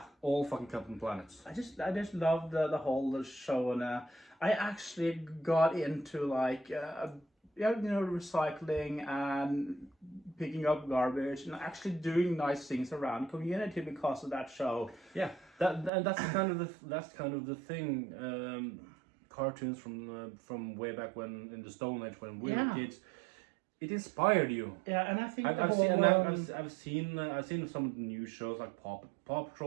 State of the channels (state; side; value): drops out; left; at 15.9 s